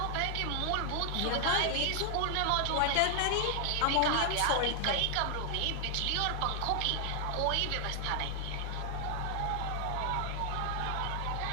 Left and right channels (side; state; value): both; different; correlation 0.00